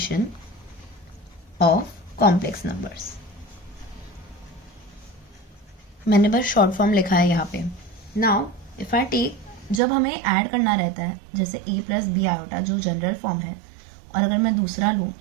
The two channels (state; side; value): drops out; left; at 9.8 s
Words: of complex numbers. मैंने बस शॉर्ट फॉर्म लिखा है यहाँ पे। नाउ इफ आई टेक, जब हमें ऐड करना रहता है जैसे a + b आयोटा जो जनरल फॉर्म है, और अगर मैं दूसरा लूँ,